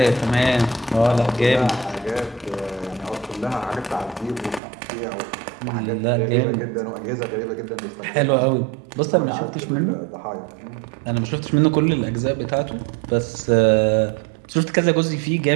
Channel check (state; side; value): drops out; left; at 4.6 s